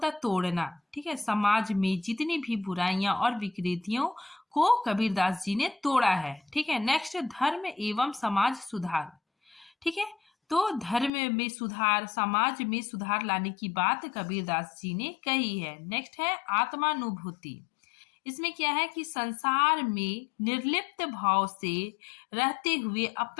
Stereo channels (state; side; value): drops out; right; at 11.1 s